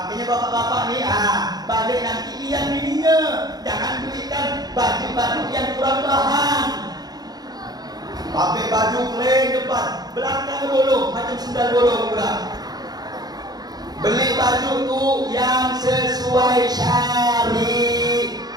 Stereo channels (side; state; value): left; late; 0.19 ms